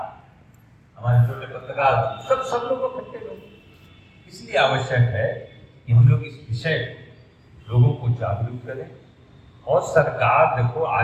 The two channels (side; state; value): both; identical; correlation 1.00